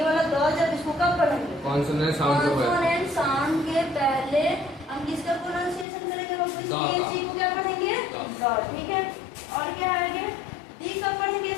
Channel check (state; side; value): drops out; right; at 5.9 s